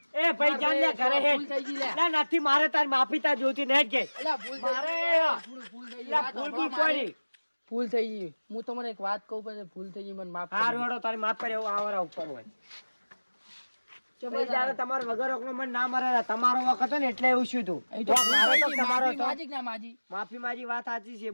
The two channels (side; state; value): both; inverted; correlation -1.00